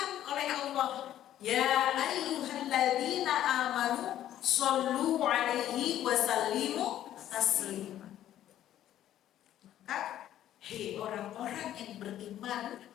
oleh Allah, ya ayyuhalladzina amanu shollu 'alaihi wa sallimu taslima. Maka hei orang-orang yang beriman,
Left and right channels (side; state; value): right; quieter; 12.0 dB